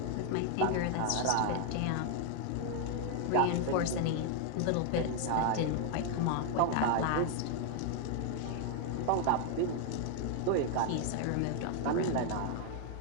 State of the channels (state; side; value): different; both; correlation 0.00